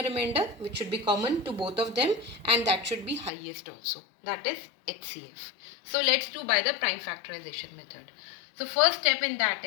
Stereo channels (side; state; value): right; drops out; at 3.3 s